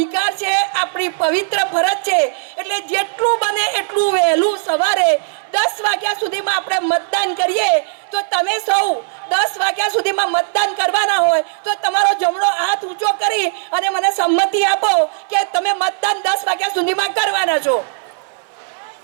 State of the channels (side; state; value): left; silent; 62 dB below the other